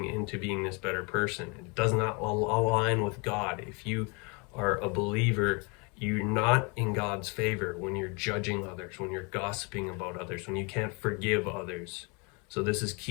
into being this better person. It does not align with God. If you are a believer, you're not in God's favor when you're judging others, when you're gossiping about others, when you can't forgive others. So this is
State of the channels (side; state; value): right; quieter; 31.4 dB